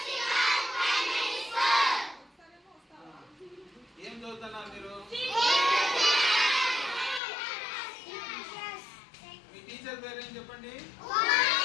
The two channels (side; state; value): right; drops out; at 7.2 s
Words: ఏం చదువుతున్నారు మీరు? మీ టీచర్ పేరు ఏం చెప్పండి?